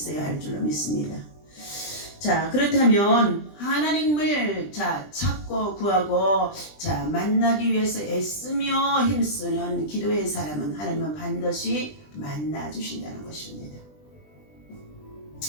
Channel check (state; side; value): late; right; 20 ms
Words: 할 줄로 믿습니다. 그렇다면 하나님을 찾고 구하고 만나기 위해서 애쓰며 힘쓰는 기도의 사람은 하나님은 반드시 만나 주신다는 것입니다.